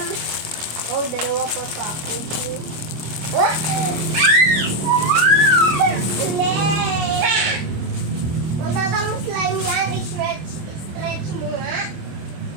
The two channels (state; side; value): late; left; 26 ms